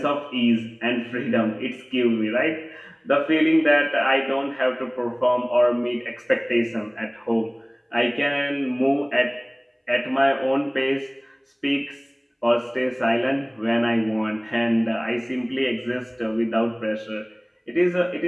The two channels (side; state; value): both; identical; correlation 1.00